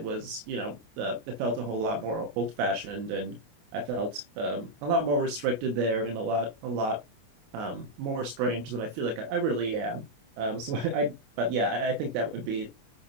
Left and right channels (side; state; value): left; late; 25 ms